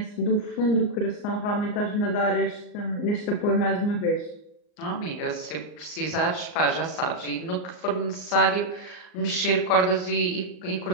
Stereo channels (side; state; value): right; late; 39 ms